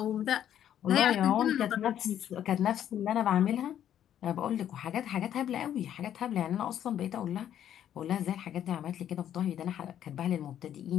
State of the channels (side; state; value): right; quieter; 10.5 dB